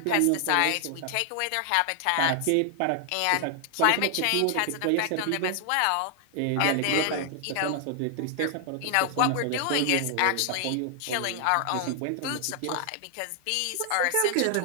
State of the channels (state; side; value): different; both; correlation 0.00